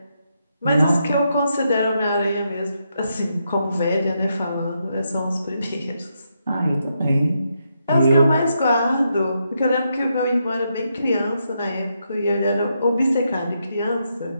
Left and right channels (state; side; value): inverted; both; correlation -0.81